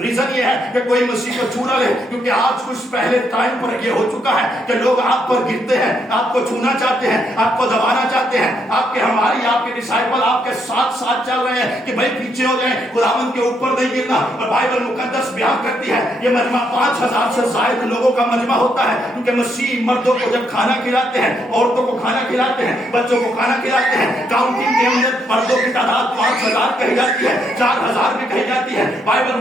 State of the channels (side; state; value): both; normal; correlation 0.75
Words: ریزن یہ ہے کہ کوئی مسیح کو چھو نہ لے, کیونکہ آج کچھ پہلے ٹائم پر یہ ہو چکا ہے کہ لوگ آپ پر گرتے ہیں, آپ کو چھونا چاہتے ہیں, آپ کو دبانا چاہتے ہیں. آپ کے ہماری آپ کے ڈسائپل آپ کے ساتھ ساتھ چل رہے ہیں کہ بھائی پیچھے ہو جائیں, خداوند کے اوپر نہیں گرنا. اور بائبل مقدس بیان کرتی ہے یہ مجمع 5000 سے زائد لوگوں کا مجمع ہوتا ہے, کیونکہ مسیح مردوں کو جب کھانا کھلاتے ہیں, عورتوں کو کھانا کھلاتے ہیں, بچوں کو کھانا کھلاتے ہیں, کاؤنٹنگ کے اندر مردوں کی تعداد 5000 کہی جاتی ہے, 4000 بھی کہی جاتی ہے. بائبل